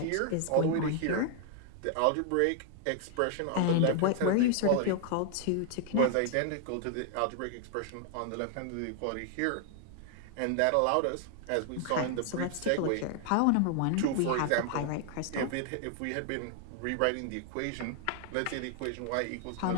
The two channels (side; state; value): both; different; correlation 0.00